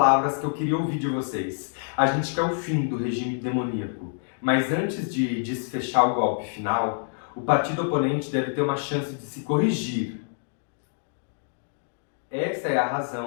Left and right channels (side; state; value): right; silent; digital silence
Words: que eu queria ouvir de vocês. A gente quer o fim do regime demoníaco. Mas antes de desfechar o golpe final, o partido oponente deve ter uma chance de se corrigir. Essa é a